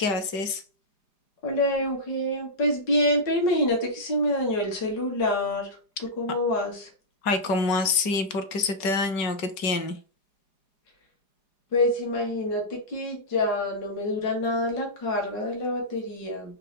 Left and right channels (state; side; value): late; right; 4.9 ms